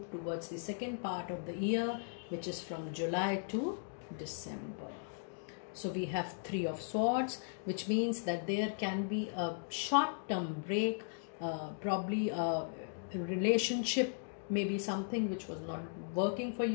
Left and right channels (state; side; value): silent; right; digital silence